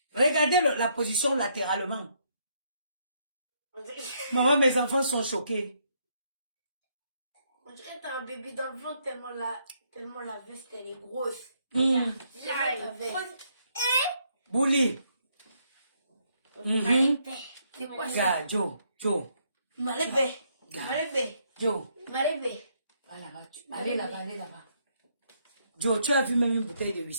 Regardez la position latéralement. Maman, mes enfants sont choqués. On dirait que t'as un bébé dans le ventre tellement la veste elle est grosse. Mm. Là, la veste. Bouli. C'est quoi ça? Regarde, Joe. Malébé. Regarde. Malébé. Joe. Malébé. Va là-bas. Allez là-bas. Joe, tu as vu même une bouteille de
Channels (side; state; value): both; inverted; correlation -0.72